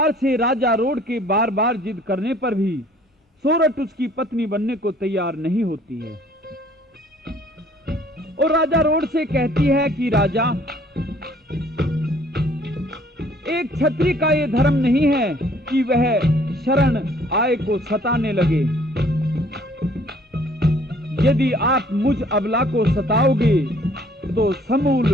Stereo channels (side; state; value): both; normal; correlation 0.58